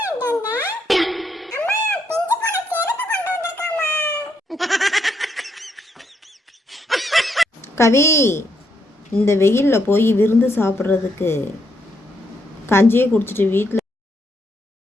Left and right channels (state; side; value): normal; both; correlation 0.77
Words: கவி, இந்த வெயிலில் போய் விருந்து சாப்பிட்றதுக்கு கஞ்சியே குடிச்சிட்டு வீட்டில்